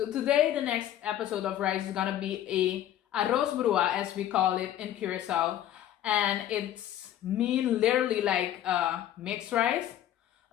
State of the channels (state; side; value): quieter; right; 11.8 dB